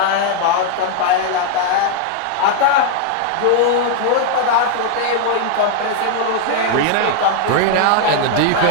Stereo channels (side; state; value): both; different; correlation 0.00